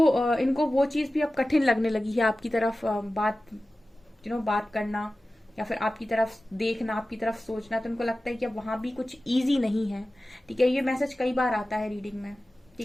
इनको वो चीज भी अब कठिन लगने लगी है, आपकी तरफ बात करना या फिर आपकी तरफ देखना, आपकी तरफ सोचना। तो इनको लगता है कि अब वहां भी कुछ इजी नहीं है, ठीक है। ये मैसेज कई बार आता है रीडिंग में,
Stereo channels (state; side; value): normal; both; correlation 0.95